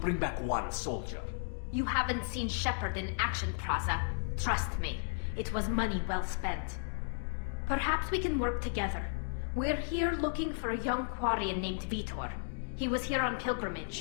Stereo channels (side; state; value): right; silent; digital silence